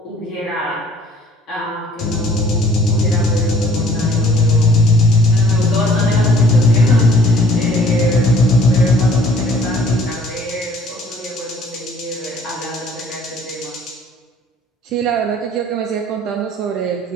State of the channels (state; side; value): normal; both; correlation 0.57